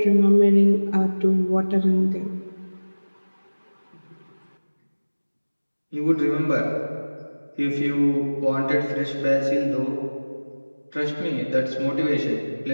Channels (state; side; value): inverted; both; correlation -1.00